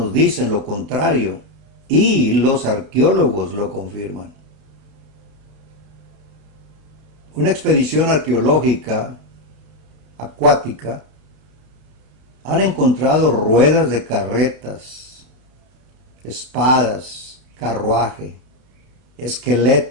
dicen lo contrario y los arqueólogos lo confirman. Una expedición arqueológica acuática han encontrado ruedas de carretas, espadas, carruaje,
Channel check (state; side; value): late; left; 31 ms